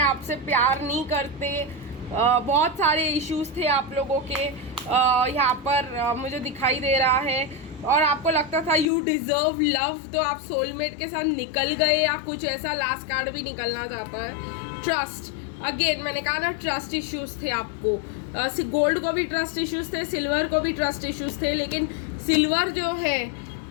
प्यार नहीं करते। बहुत सारे इश्यूज थे आप लोगों के यहाँ पर मुझे दिखाई दे रहा है, और आपको लगता था यू डिज़र्व लव। तो आप सोलमेट के साथ निकल गए, या कुछ ऐसा लास्ट कार्ड भी निकलना चाहता है। ट्रस्ट, अगेन मैंने कहा ना ट्रस्ट इश्यूज थे आपको। गोल्ड को भी ट्रस्ट इश्यूज थे, सिल्वर को भी ट्रस्ट इश्यूज थे, लेकिन सिल्वर जो है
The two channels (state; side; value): drops out; right; at 8.8 s